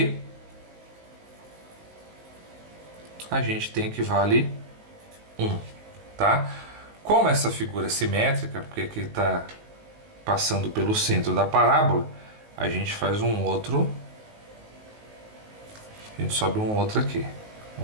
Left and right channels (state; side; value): late; left; 19 ms